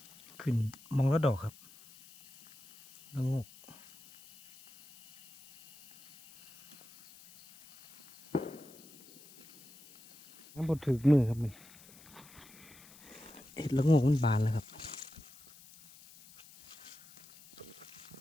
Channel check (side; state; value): left; noise; hiss, 21 dB below the sound